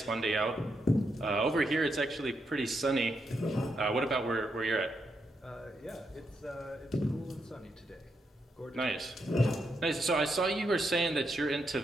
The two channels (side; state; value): both; normal; correlation 0.81